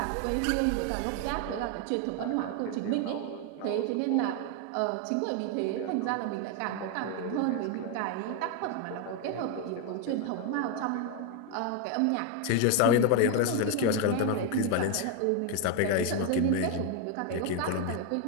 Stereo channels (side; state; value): both; different; correlation 0.01